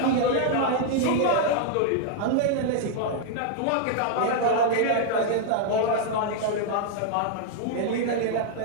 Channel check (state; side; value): different; both; correlation 0.00